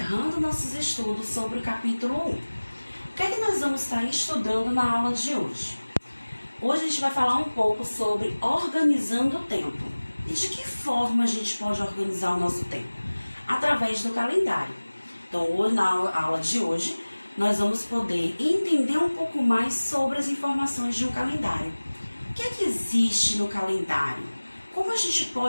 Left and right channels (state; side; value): inverted; both; correlation -1.00